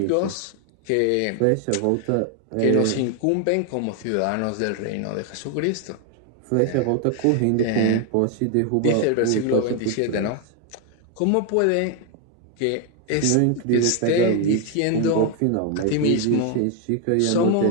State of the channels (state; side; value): different; both; correlation 0.01